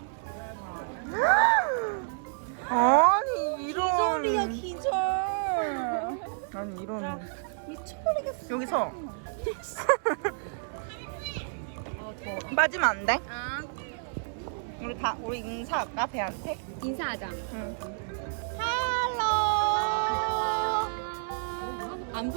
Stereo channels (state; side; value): silent; left; 58 dB below the other